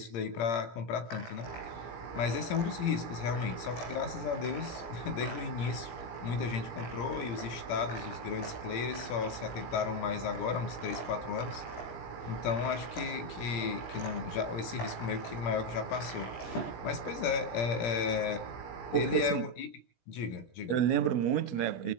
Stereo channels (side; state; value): right; late; 17 ms